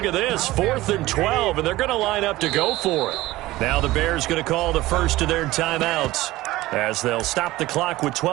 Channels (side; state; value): left; quieter; 17.7 dB